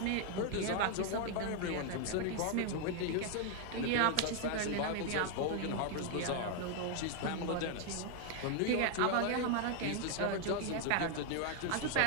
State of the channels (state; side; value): different; both; correlation 0.00